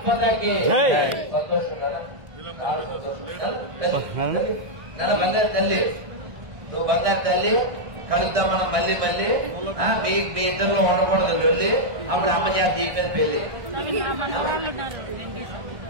మాతాకి బంగారు తల్లి, నువ్వు బంగారు తల్లి. కలుద్దాం మనం మళ్ళీ మీ ఇద్దరిలో ఉండకూడదు వెళ్ళి. అప్పుడు అమ్మ చేత దీపేది పెళ్లి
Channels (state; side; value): late; left; 1.6 ms